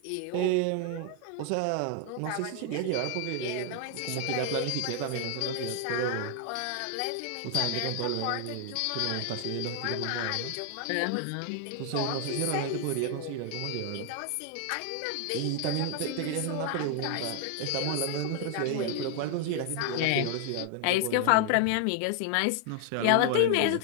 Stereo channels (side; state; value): both; different; correlation 0.00